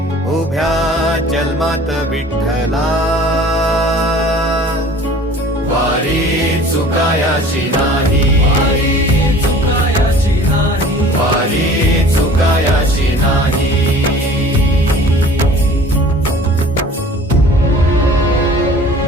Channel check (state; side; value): normal; both; correlation 0.46